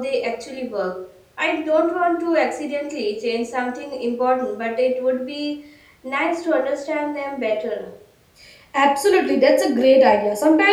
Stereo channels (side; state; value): both; identical; correlation 1.00